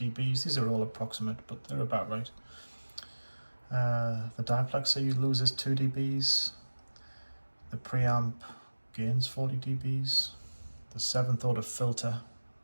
These are all approximate, but they're about right. The diplexer loses 2 dBs. The preamp gains 40 dBs. The 7th order filter,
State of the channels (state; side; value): inverted; both; correlation -1.00